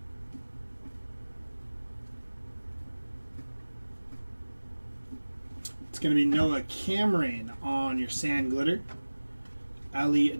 It's going to be Noah Cameron on your sand glitter. Ali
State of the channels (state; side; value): inverted; both; correlation -1.00